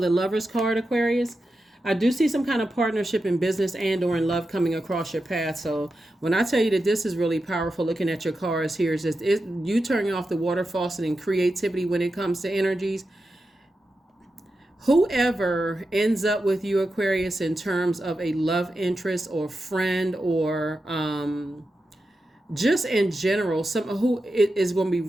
the Lover's card, Aquarius. I do see some kind of partnership in business and or in love coming across your path. So when I tell you that this is really powerful, looking at your cards here, is just you turning off the water faucet and creativity when it comes to energies. Whoever ends up with you, Aquarius, in terms of a love interest or friend or just in general, someone who is going to be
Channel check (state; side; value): normal; both; correlation 0.90